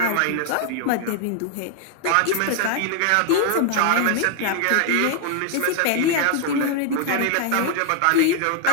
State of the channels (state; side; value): different; both; correlation 0.00